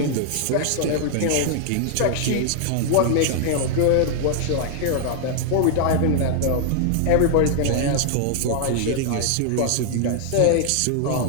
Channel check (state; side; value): different; both; correlation -0.01